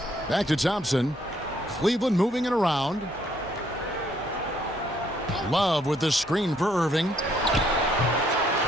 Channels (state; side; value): normal; both; correlation 0.68